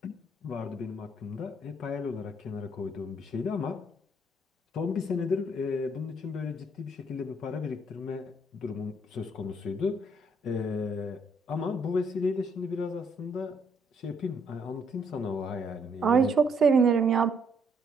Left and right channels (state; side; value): normal; both; correlation 0.69